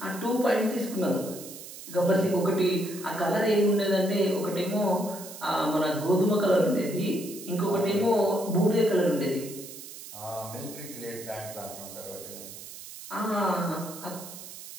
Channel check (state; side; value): noise; right; hiss, 13 dB below the sound